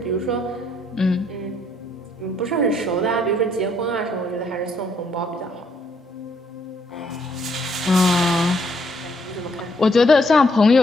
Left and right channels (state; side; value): normal; both; correlation 0.70